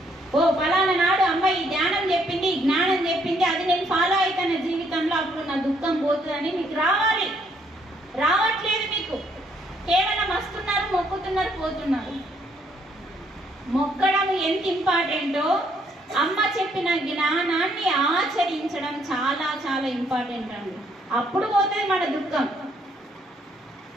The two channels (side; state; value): both; normal; correlation 0.69